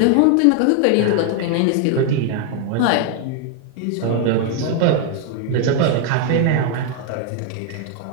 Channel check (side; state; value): both; different; correlation 0.00